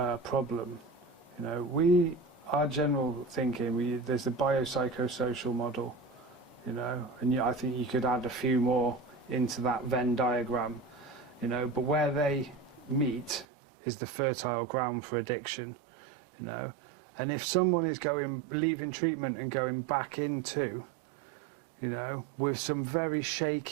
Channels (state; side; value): drops out; left; at 13.5 s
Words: problem. You know, our general thinking, there's the biopsychosocial model, you know, and I think you could add a few more into that Venn diagram, you know, but where they meet is the fertile ground for addiction, you know. And if someone is leaving treatment and going back into, you know, with some very